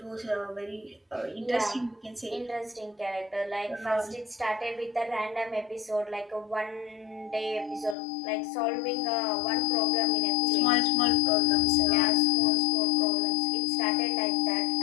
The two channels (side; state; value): right; drops out; at 8.0 s